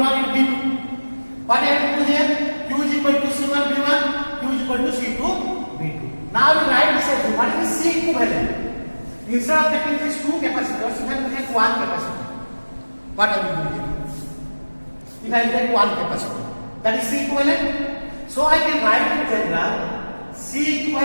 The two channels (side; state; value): both; inverted; correlation -1.00